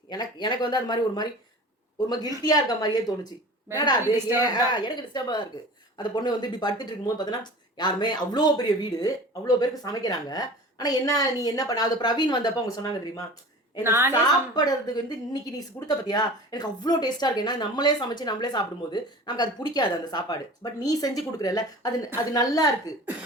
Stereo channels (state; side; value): normal; both; correlation 0.39